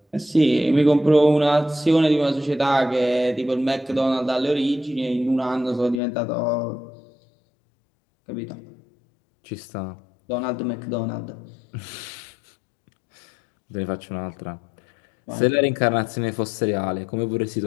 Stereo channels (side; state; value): right; drops out; at 6.0 s